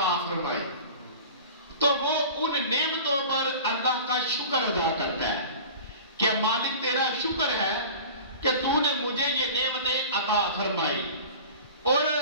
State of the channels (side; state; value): both; inverted; correlation -0.38